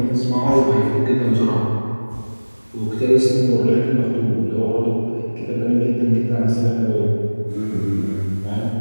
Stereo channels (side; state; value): both; inverted; correlation -1.00